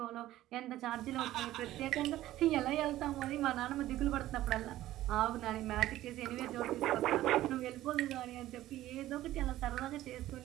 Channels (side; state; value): left; quieter; 14.7 dB